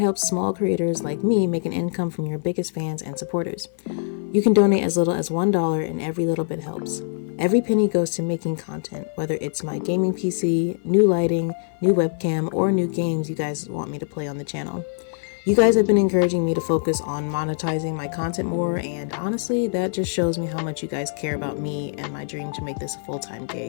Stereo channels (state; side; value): silent; right; 55 dB below the other